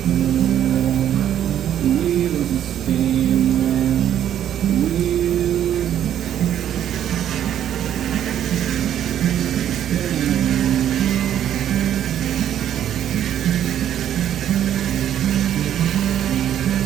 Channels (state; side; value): quieter; left; 10.5 dB